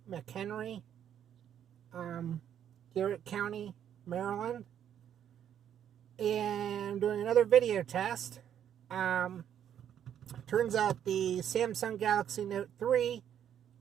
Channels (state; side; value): quieter; left; 9.6 dB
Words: McHenry, Garrett County, Maryland. And I'm doing another video test. Turns out the Samsung Galaxy Note 3